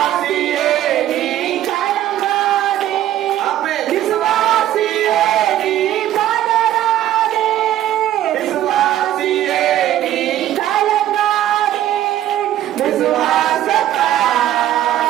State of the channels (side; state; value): left; quieter; 12.7 dB